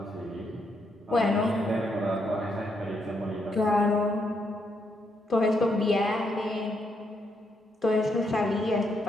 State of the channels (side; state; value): both; normal; correlation 0.77